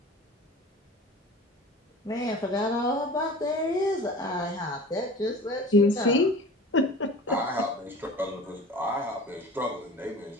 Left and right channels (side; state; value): both; normal; correlation 0.39